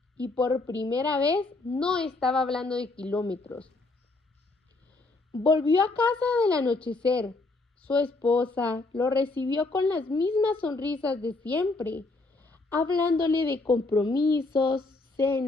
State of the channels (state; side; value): quieter; right; 3.3 dB